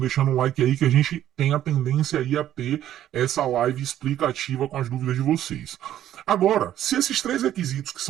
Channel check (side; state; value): left; quieter; 11.9 dB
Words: um like aí que a gente tem a tendência aí a ter essa live explicativa com as dúvidas de vocês. Agora, se esses 3 requisitos, que